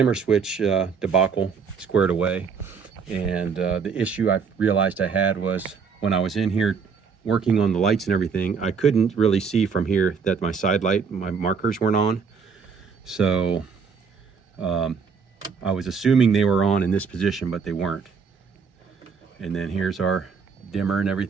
switch debacle squared away. And the issue I realized I had was when I was in here working on the lights and everything, I couldn't really see from here that my side light, my markers weren't on. So I was assuming they were on in this position, but they weren't. And then here's our dimmer and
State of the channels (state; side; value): quieter; left; 5.7 dB